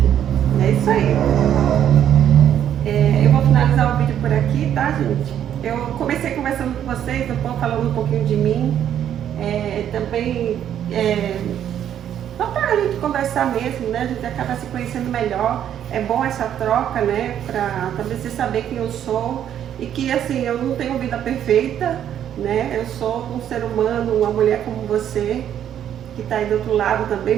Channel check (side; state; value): left; quieter; 10.1 dB